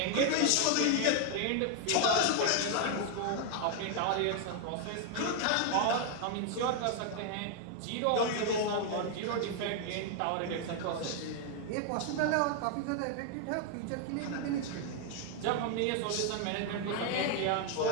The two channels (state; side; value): different; both; correlation 0.00